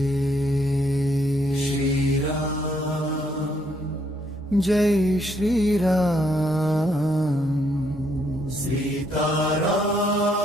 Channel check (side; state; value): both; normal; correlation 0.72